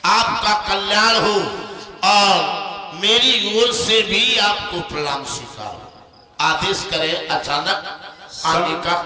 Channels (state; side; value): identical; both; correlation 1.00